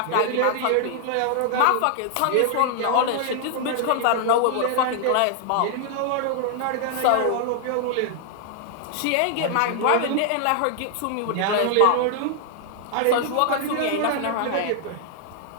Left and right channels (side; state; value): both; different; correlation 0.00